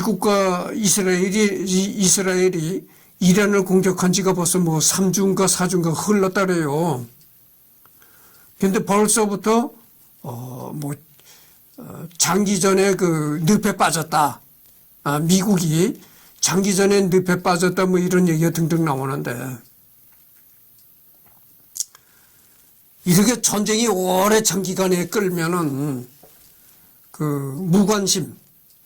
이스라엘이 이란을 공격한 지가 벌써 뭐 3주인가 4주인가 흘렀다 그래요. 근데 벌써부터 장기전에 그 늪에 빠졌다. 미국이 장기전에 늪에 빠졌다 뭐 이런 얘기가 등등 나오는데 이렇게 전쟁이 오래 장기간에 끌면은 그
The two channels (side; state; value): both; identical; correlation 1.00